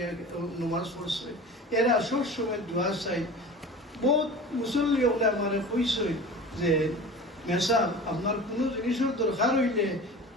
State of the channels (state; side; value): normal; both; correlation 0.37